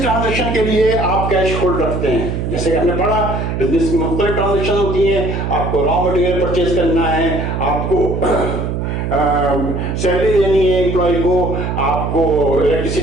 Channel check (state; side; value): noise; right; hum, 2 dB below the sound